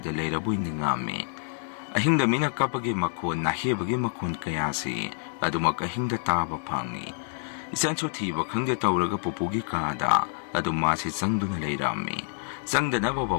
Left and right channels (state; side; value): silent; right; digital silence